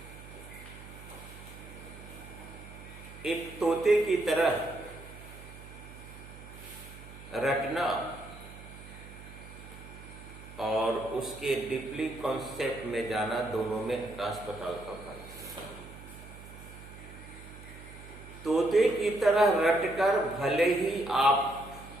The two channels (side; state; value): right; noise; hum, 16 dB below the sound